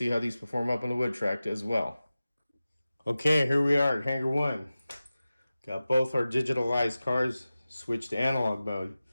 how these perform up on the wood track as well. Okay, here we are at Hangar 1. Got both our digitalized cars switched to analog mode.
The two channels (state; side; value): inverted; both; correlation -0.95